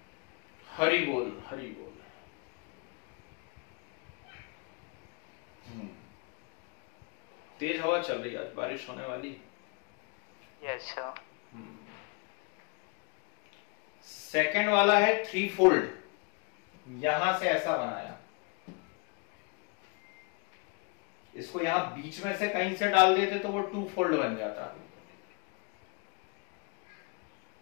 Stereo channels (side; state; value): right; quieter; 32.2 dB